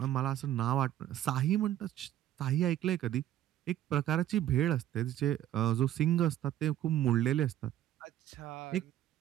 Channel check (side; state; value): left; quieter; 12.3 dB